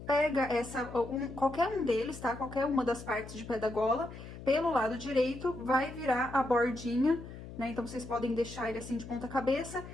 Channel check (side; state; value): left; noise; hum, 13 dB below the sound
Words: pega qualquer um deles, tá? Qualquer uma das partes de pé da gola, pelo lado direito, vai virar a bordinha, né? Então, vocês podem deixar ele assim de ponta cabeça,